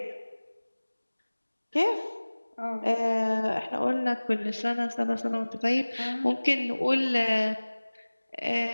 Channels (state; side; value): inverted; both; correlation -1.00